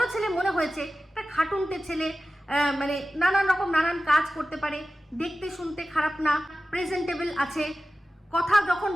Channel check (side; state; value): both; normal; correlation 0.95